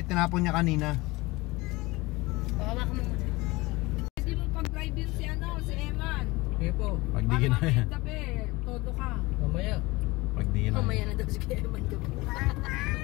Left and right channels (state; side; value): quieter; right; 22.1 dB